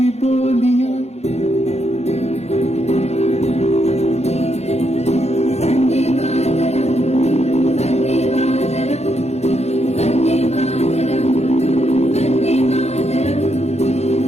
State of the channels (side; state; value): right; late; 0.31 ms